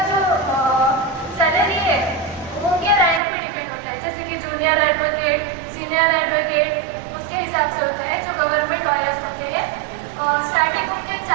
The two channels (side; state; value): left; drops out; at 3.2 s